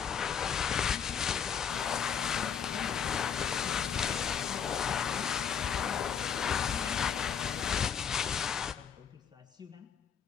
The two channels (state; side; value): quieter; right; 7.3 dB